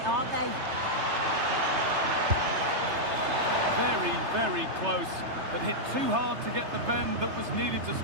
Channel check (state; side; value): late; left; 3.3 ms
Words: aren't they? Very, very close, but hit too hard to get the bend that was needed to